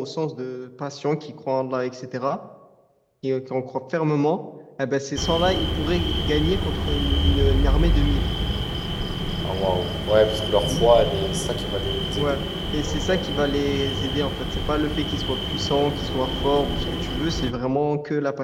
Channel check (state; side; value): identical; both; correlation 1.00